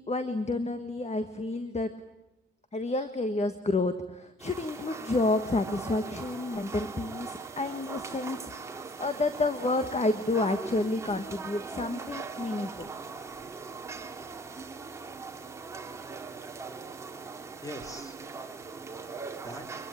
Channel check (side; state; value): both; normal; correlation 0.56